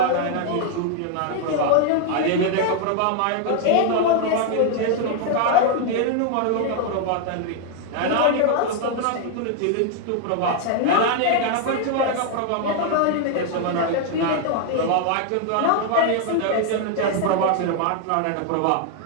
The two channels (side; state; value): both; different; correlation 0.00